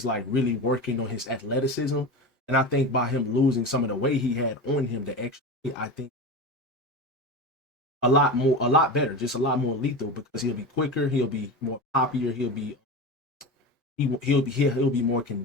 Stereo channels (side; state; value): both; normal; correlation 0.25